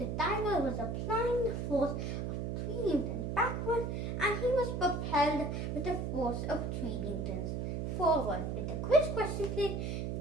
diver was applying the force of 3 newtons backward, and he was propelled with the force of 3 newtons forward. With the quiz question today,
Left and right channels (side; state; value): right; noise; hum, 2 dB below the sound